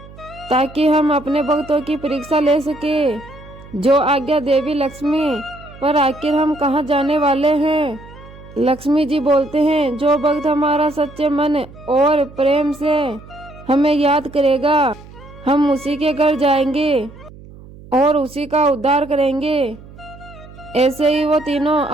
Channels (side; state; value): right; noise; hum, 19 dB below the sound